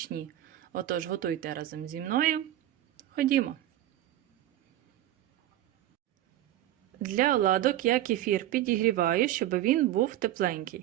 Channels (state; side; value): quieter; left; 13.5 dB